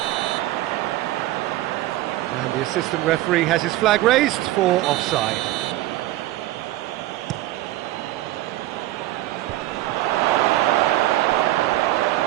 And the assistant referee has his flag raised for offside.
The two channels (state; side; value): quieter; left; 16.2 dB